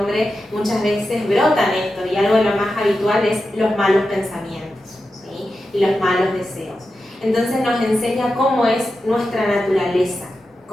muchas veces brotan esto, y algo de lo más habitual es los malos pensamientos, ¿sí?, y los malos deseos. Entonces nos enseña cómo es nuestra naturaleza,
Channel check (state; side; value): normal; both; correlation 0.90